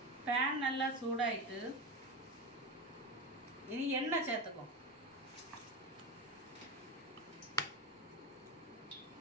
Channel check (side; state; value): both; normal; correlation 0.20